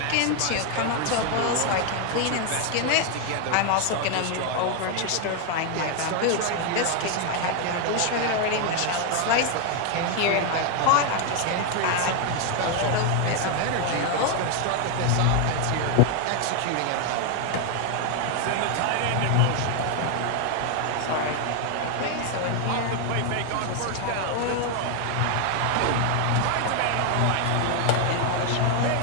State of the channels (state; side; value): different; both; correlation 0.01